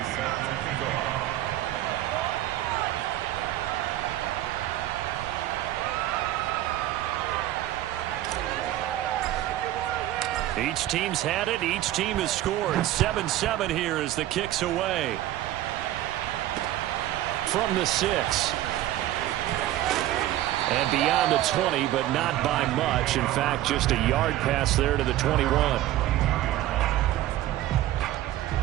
Each team's had it. Each team has scored. 7-7 here as the kick's away. From the 6. And beyond the 20, but not by much. In fact, just a yard pass there to the 21.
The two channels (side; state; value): left; quieter; 14.1 dB